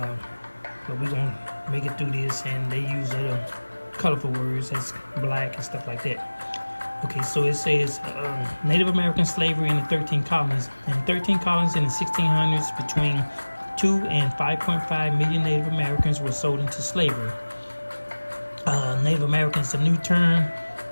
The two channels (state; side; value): inverted; both; correlation -1.00